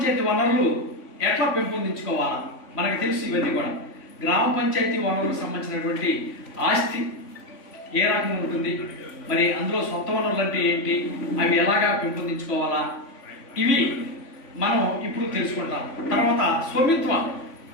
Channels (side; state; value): right; late; 3.5 ms